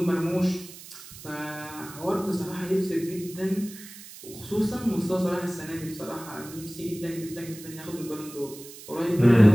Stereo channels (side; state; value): right; noise; hiss, 16 dB below the sound